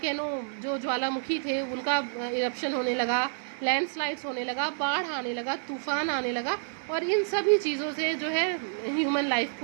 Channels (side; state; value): left; silent; 59 dB below the other